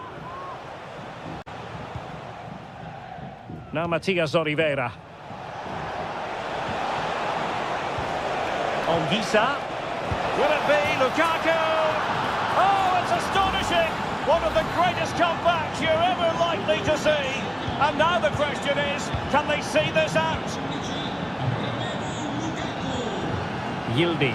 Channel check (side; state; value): both; identical; correlation 1.00